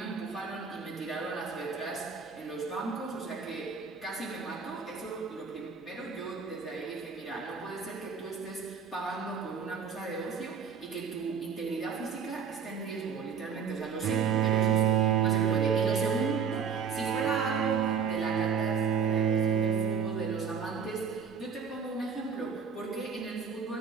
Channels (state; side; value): quieter; left; 6.3 dB